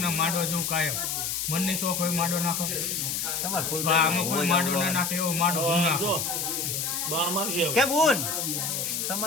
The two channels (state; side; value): noise; left; hiss, 1 dB below the sound